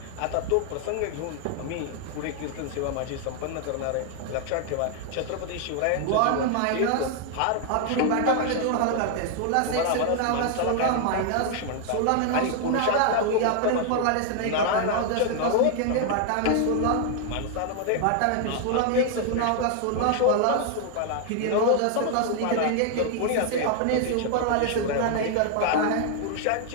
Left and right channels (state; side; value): different; both; correlation 0.00